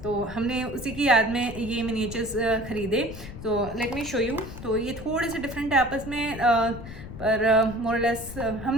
तो हमने उसी की याद में ये मिनिएचर्स ख़रीदे। तो लेट मी शो यू। तो ये थोड़े से डिफरेंट है आपस में, और मोरलेस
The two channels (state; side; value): noise; left; rumble, 12 dB below the sound